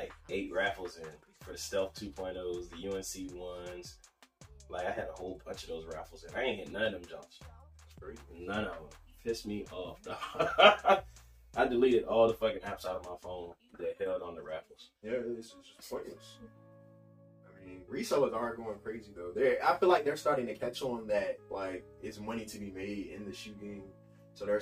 8 raffles in for the Stealth 2.0s, the UNC ones. Like I had a whole bunch of those raffles in. I ain't hit none of them jumps. None of them. Pissed me off. I deleted all the fucking apps out of my phone that held on the raffles. Yeah, it's just pointless. I mean, resellers are going crazy though. I feel like they're starting to catch on that like it's money to be made in the shoe game, so they're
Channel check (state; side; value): identical; both; correlation 1.00